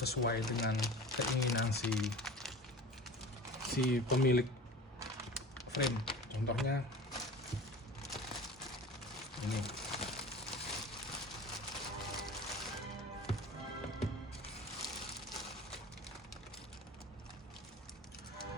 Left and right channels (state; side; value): normal; both; correlation 0.38